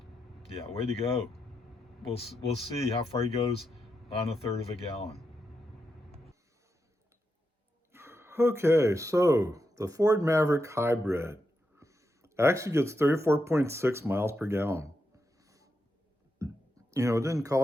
Yeah, way to go. We'll see how far he goes on 1/3 of a gallon. Okay, so the Ford Maverick Hybrid actually gets 34.6 miles per gallon. You know, it didn't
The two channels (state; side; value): normal; both; correlation 0.85